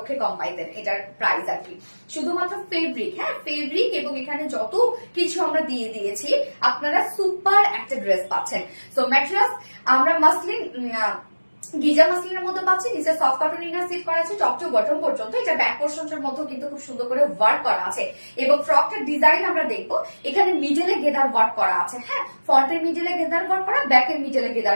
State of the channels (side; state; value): both; inverted; correlation -1.00